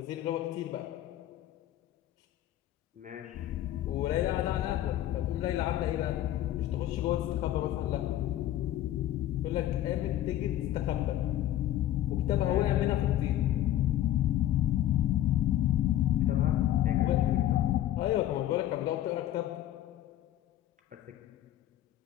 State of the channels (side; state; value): right; quieter; 12.9 dB